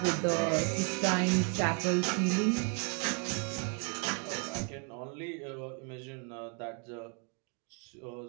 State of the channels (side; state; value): left; quieter; 33.2 dB